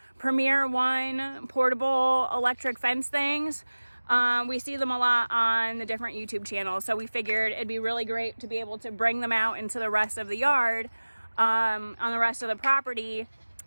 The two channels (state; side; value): inverted; both; correlation -1.00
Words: Premier One portable electric fence things. We see them a lot on the different YouTube channels. So we figured it'd be really great to be able to bring them out into the rest of the yard, on the rest of the property,